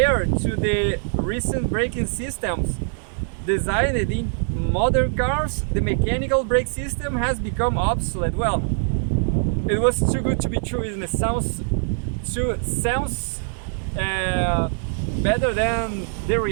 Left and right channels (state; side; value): silent; left; digital silence